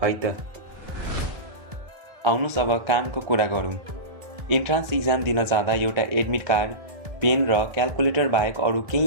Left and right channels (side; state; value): left; late; 1.3 ms